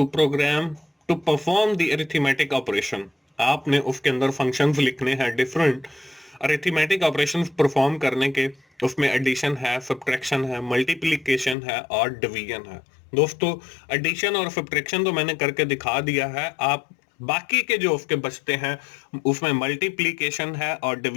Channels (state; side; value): drops out; right; at 11.6 s